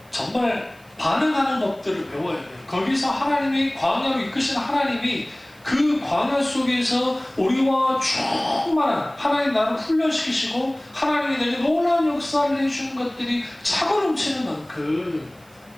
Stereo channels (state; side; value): noise; right; hiss, 29 dB below the sound